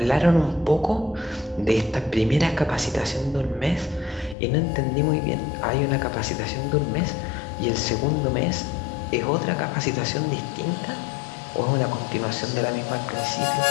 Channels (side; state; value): right; drops out; at 4.4 s